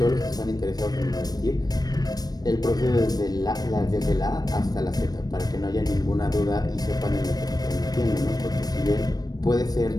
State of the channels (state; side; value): late; right; 0.19 ms